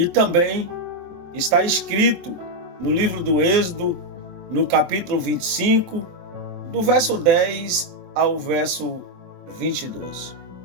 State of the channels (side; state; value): left; late; 23 ms